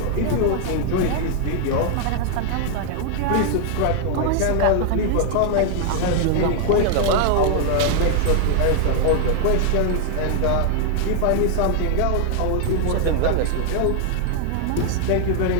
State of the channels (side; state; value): both; different; correlation 0.00